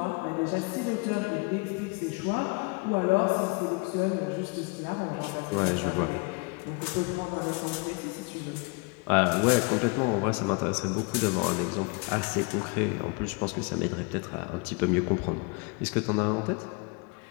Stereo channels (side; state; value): right; quieter; 30.2 dB